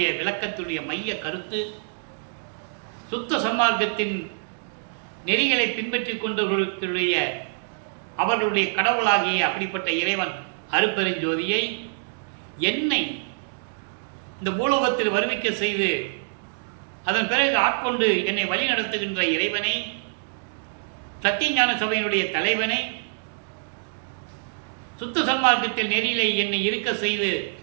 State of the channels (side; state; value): left; silent; digital silence